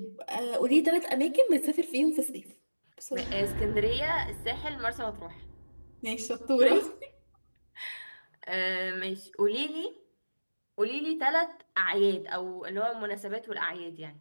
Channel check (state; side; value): inverted; both; correlation -1.00